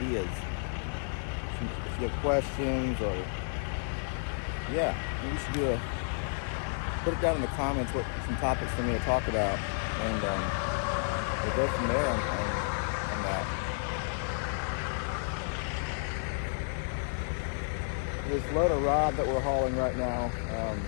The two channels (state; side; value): silent; right; digital silence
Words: If you have questions, or yeah, you should put it down in the comments what some topics for me to talk about, and we'll go from there on that. This load of rod that we're hauling right now,